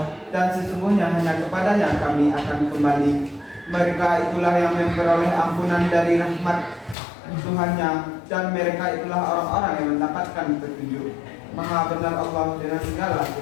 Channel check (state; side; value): drops out; right; at 7.0 s